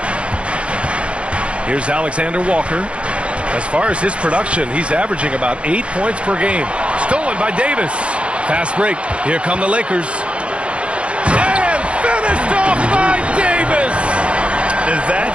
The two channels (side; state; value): left; late; 0.060 ms